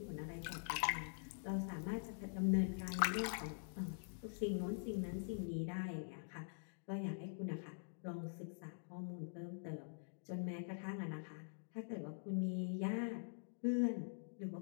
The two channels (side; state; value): right; silent; digital silence